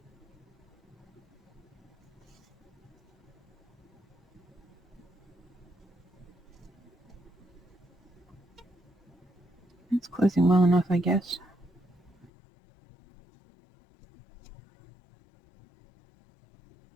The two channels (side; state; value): right; drops out; at 12.3 s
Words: It's closing well enough, I guess.